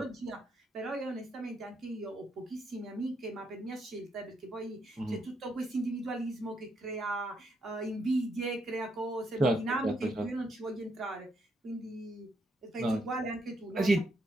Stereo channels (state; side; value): normal; both; correlation 0.77